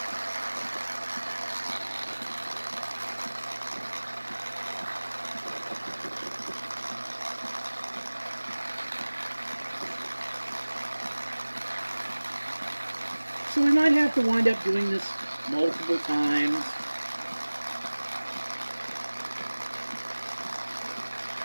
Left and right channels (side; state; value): both; inverted; correlation -1.00